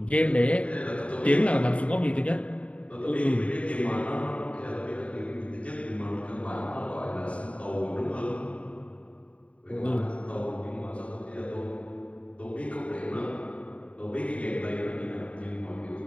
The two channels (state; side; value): late; right; 0.064 ms